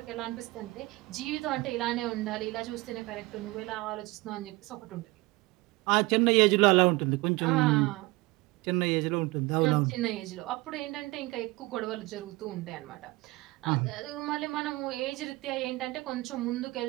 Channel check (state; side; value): quieter; left; 22.2 dB